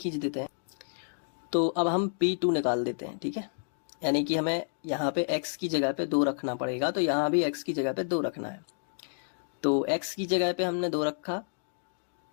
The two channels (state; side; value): silent; right; digital silence